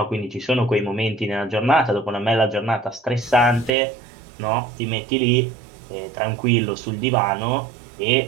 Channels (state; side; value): drops out; left; at 3.7 s